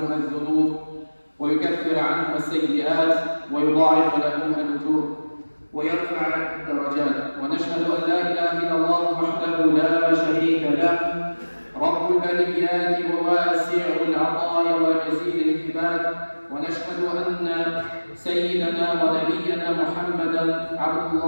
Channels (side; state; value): both; inverted; correlation -1.00